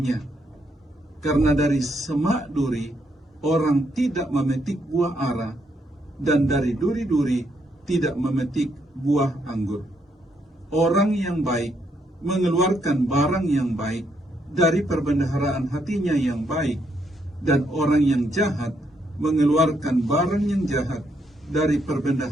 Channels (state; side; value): normal; both; correlation 0.75